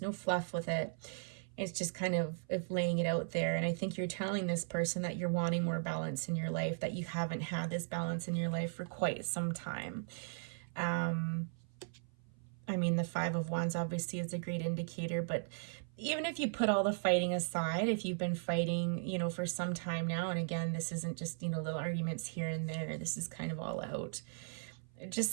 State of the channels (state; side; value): silent; left; 53 dB below the other